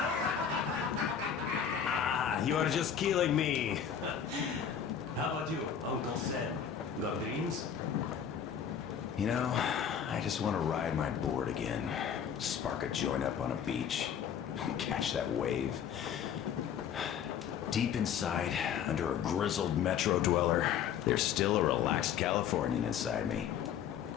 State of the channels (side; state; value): right; quieter; 8.3 dB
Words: You are just killing me. How about you, Uncle Sam? Got dreams? You know, I just want to ride my board again. Spark a joint up on a beach. Catch that wave. Deep inside, under a grizzled metro dweller, there's still a relaxed Californian inside me.